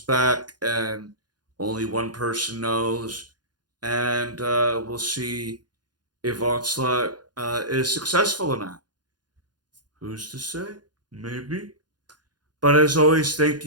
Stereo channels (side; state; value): left; late; 0.70 ms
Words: back, and only one person knows. And we'll see if Onslaught is successful or not. Who's to say? Maybe. But as always, thank